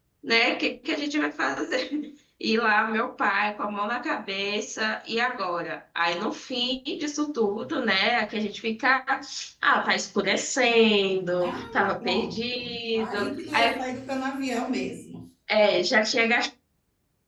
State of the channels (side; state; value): both; identical; correlation 1.00